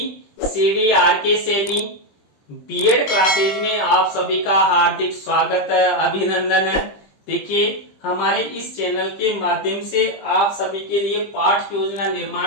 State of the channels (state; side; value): late; right; 20 ms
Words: CDRK Saini. B Ed classes में आप सभी का हार्दिक स्वागत है, अभिनंदन है। देखिए, हमारे इस चैनल के माध्यम से आप सभी के लिए पाठ योजना